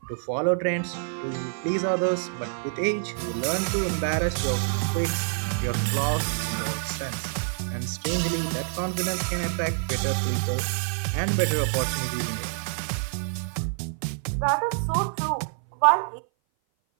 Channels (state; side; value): silent; left; 57 dB below the other